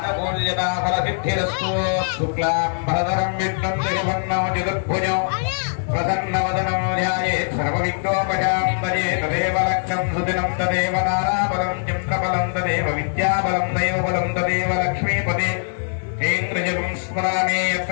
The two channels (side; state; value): right; silent; 56 dB below the other